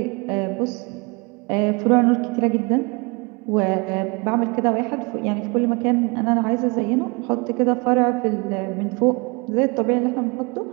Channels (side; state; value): left; quieter; 28.8 dB